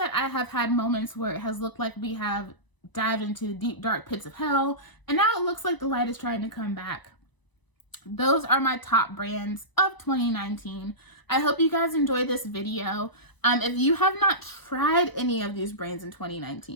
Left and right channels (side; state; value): right; late; 1.0 ms